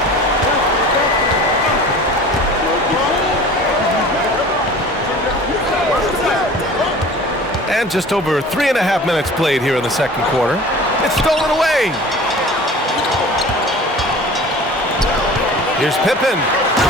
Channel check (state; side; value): normal; both; correlation 0.42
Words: And just over 3.5 minutes played here in the second quarter. It's stolen away. Here's Pippen.